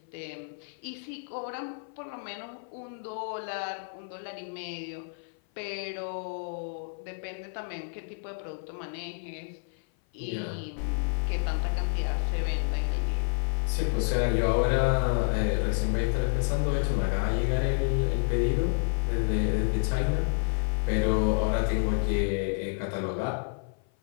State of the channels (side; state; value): right; silent; 55 dB below the other